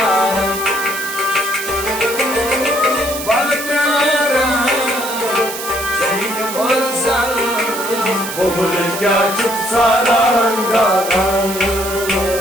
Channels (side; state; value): right; noise; hiss, 8 dB below the sound